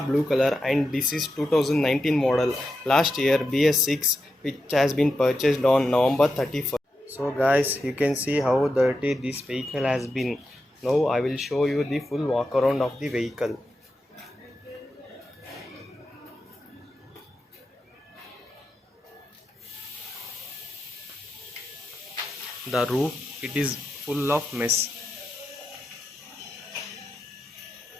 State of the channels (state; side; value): normal; both; correlation 0.88